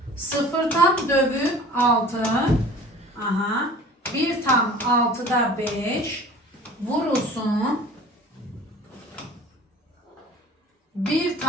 0 tam dövü 6. Aha. 1 tam 6'da 5 vurulsun. 1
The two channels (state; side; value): normal; both; correlation 0.44